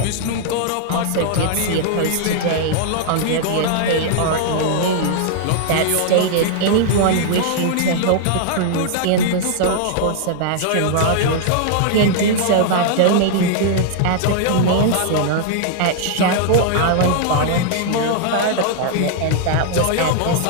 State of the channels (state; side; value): different; both; correlation -0.01